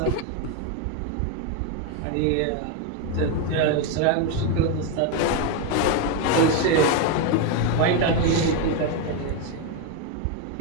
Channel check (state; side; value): different; both; correlation 0.02